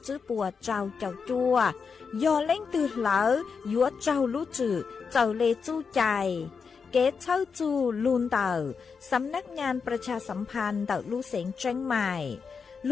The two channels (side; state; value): right; quieter; 5.6 dB